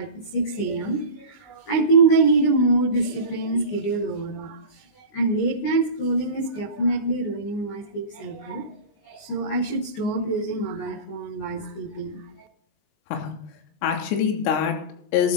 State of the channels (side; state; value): right; late; 19 ms